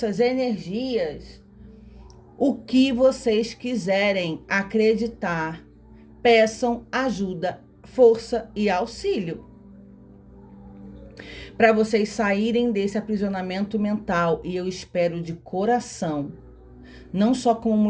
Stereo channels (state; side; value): identical; both; correlation 1.00